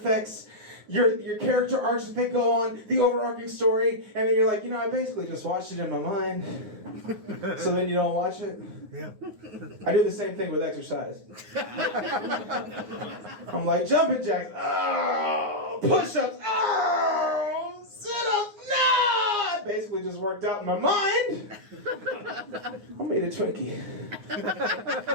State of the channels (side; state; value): left; late; 9.6 ms